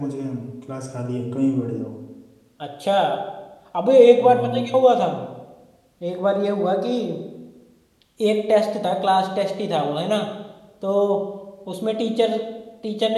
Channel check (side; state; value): both; identical; correlation 1.00